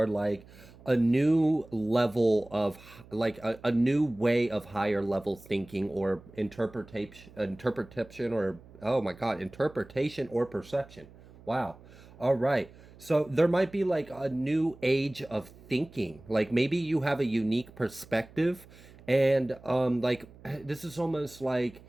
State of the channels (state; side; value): noise; right; hum, 22 dB below the sound